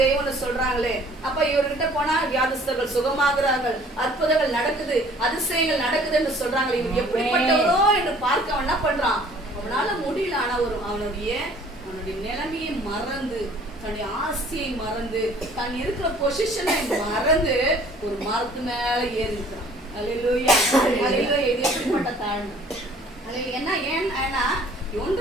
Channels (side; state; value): both; normal; correlation 0.54